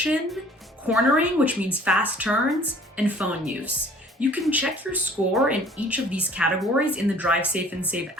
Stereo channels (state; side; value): normal; both; correlation 0.53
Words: cornering, which means fast turns, and phone use. You can check your score in each of these categories in the Drive Safe and Save